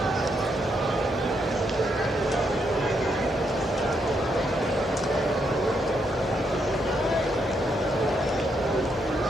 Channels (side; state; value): both; normal; correlation 0.78